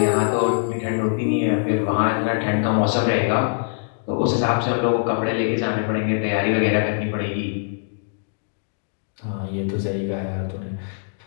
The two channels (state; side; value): silent; right; digital silence